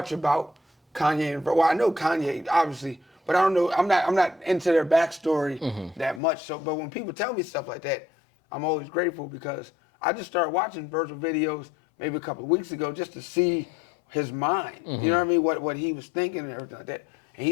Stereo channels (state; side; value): drops out; right; at 6.2 s